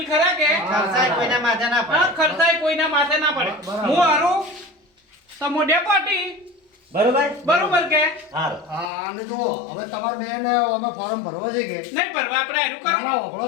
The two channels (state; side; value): drops out; right; at 8.9 s